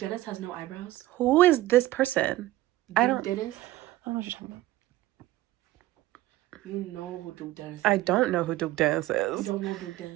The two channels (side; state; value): left; quieter; 16.2 dB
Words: has no eyebrows? Who is this person? Dennis? I don't know what you're talking about. You know who Duke Dennis is. I don't know who Duke Dennis is. You don't know Duke